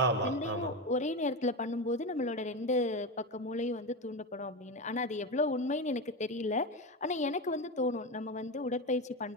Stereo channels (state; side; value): normal; both; correlation 0.18